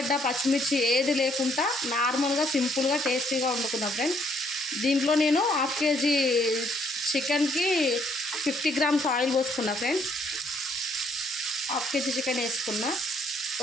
పచ్చిమిర్చి ఏది లేకుండా నార్మల్గా సింపుల్గా టేస్టీగా వండుకున్నా ఫ్రెండ్స్. దీంట్లో నేను హాఫ్ కేజీ చికెన్కి 50 grams ఆయిల్ పోసుకున్నా ఫ్రెండ్స్. హాఫ్ కేజీ చికెన్ వేసుకున్నా,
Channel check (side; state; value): both; normal; correlation 0.67